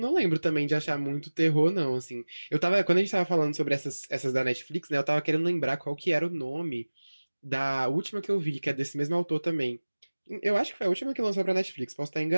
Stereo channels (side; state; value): both; inverted; correlation -1.00